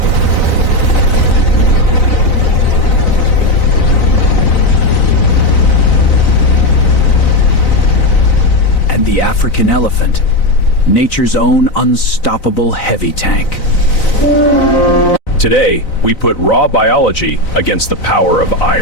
And the African elephant, nature's own unstoppable heavy tank. Today, we put raw biology against the power of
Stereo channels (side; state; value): right; late; 4.0 ms